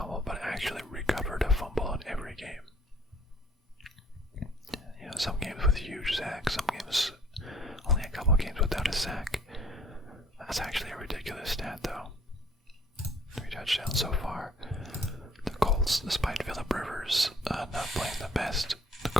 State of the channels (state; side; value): normal; both; correlation 0.57